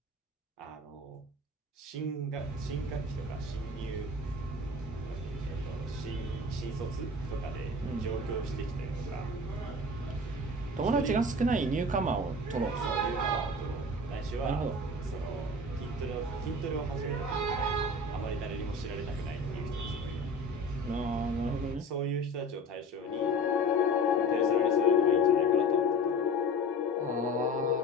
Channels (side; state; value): both; normal; correlation 0.36